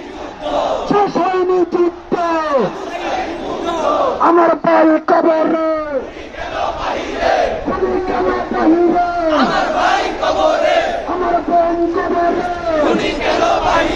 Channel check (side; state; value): both; identical; correlation 1.00